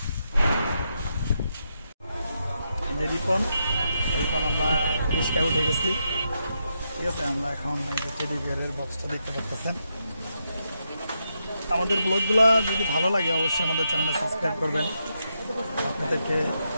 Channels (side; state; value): both; inverted; correlation -0.83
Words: রিপন আমরা রিস্কা উঠে গেছি, ঠিক আছে। আমরা এখন টেডি বিয়ারের বক্সটা দেখতে পাচ্ছেন। আমাদের ব্লগগুলো যদি ভালো লাগে অবশ্যই আমাদের চ্যানেলটা সাবস্ক্রাইব করবেন। আপনাদেরকে